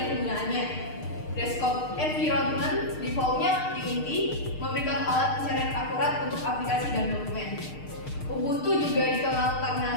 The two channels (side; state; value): right; late; 6.6 ms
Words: penggunaannya. Desktop environment defaultnya Unity memberikan alat pencarian akurat untuk aplikasi dan dokumen. Ubuntu juga dikenal